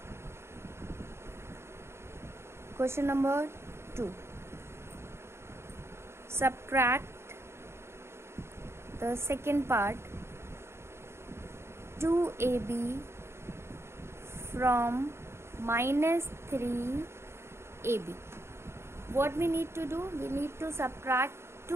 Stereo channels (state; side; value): late; left; 0.12 ms